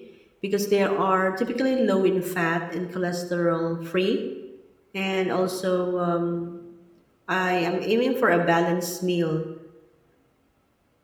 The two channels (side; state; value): both; identical; correlation 1.00